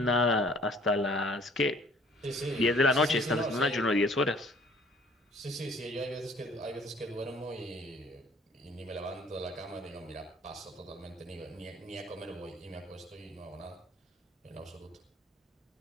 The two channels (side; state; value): both; normal; correlation 0.55